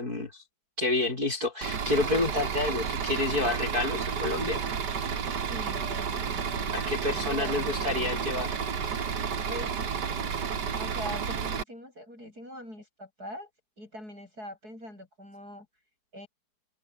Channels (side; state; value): left; late; 5.1 ms